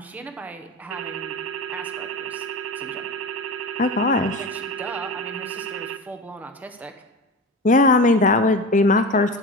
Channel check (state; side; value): normal; both; correlation 0.27